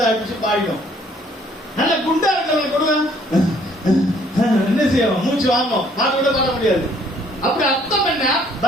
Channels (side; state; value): both; normal; correlation 0.62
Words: அடிச்சு பாடிடும். நல்ல குண்டா இருக்கிறவங்க கொடுங்க, என்ன செய்வோம்? மூச்சு வாங்கும், பாட்டு கூட பாட முடியாது. அப்படி அர்த்தம் என்ன?